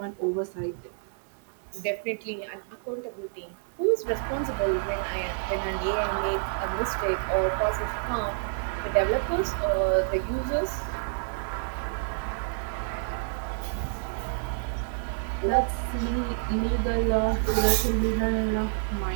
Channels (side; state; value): left; silent; digital silence